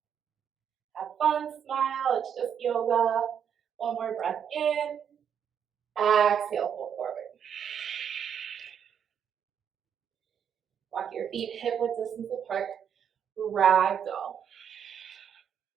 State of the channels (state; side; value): quieter; left; 8.2 dB